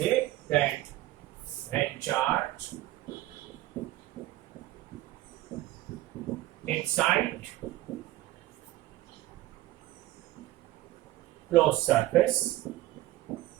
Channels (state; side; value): quieter; left; 16.1 dB